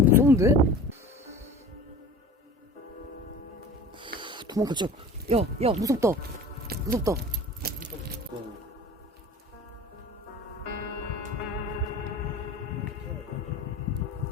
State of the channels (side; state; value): both; normal; correlation 0.40